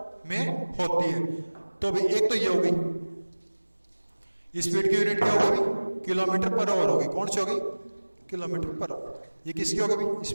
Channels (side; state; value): both; inverted; correlation -1.00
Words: में होती है। तो भाई एक तो ये हो गई, स्पीड की यूनिट क्या होगी भाई, किलोमीटर पर आवर होगी। कौन सी होगी, किलोमीटर पर आवर। ये किसकी होगी भाई,